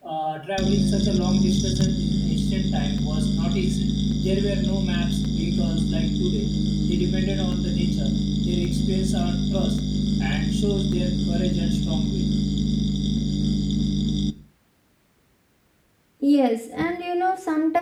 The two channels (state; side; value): identical; both; correlation 1.00